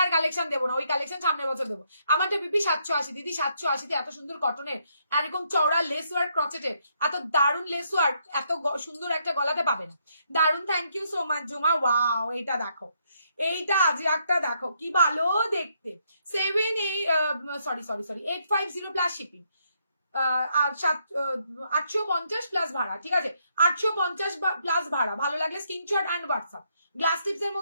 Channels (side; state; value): both; inverted; correlation -0.74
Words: আর কালেকশন দেবো না। ওই কালেকশন সামনের বছর দেবো। আমারটা পিপি 780 দিদি, 780 এত সুন্দর কটনের, এরকম চওড়া লেস ওয়ার্ক ক্রচেটের, এত দারুণ লেস ওয়ার্ক, এত সুন্দর একটা গলাতে পাবে না। দারুণ, থ্যাংক ইউ সো মাচ জুমা। ওয়াও, এটা দেখো, এইটা আজরাকটা দেখো কি ভালো দেখতে। 850 প্লাস শিপিং, 850 প্লাস ভাড়া, ঠিক আছে? 850 প্লাস ভাড়া। ভালো লাগলে screenshot and WhatsApp. Glass tips এর